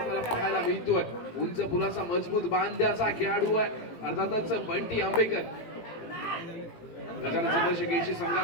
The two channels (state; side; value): late; right; 18 ms